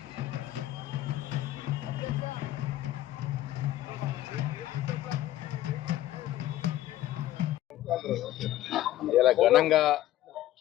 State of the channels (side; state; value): right; quieter; 14.2 dB